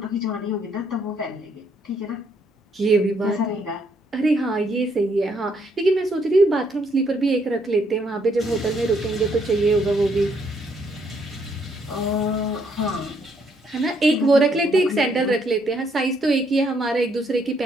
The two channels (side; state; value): both; normal; correlation 0.71